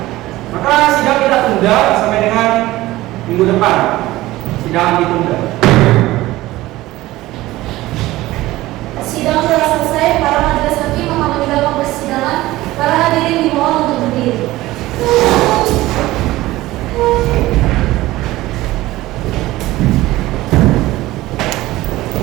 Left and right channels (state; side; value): quieter; left; 17.4 dB